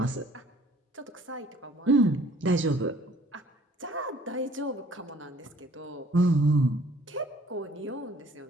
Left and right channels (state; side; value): normal; both; correlation 0.56